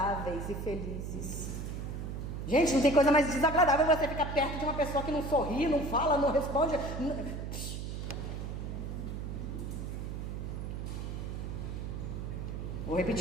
e felizes. Gente, não tem coisa mais desagradável você ficar perto de uma pessoa que não sorri, não fala, não responde. Vou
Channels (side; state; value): right; noise; hum, 5 dB below the sound